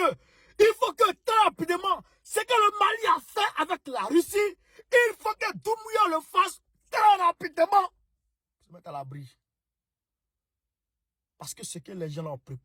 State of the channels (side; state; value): both; identical; correlation 1.00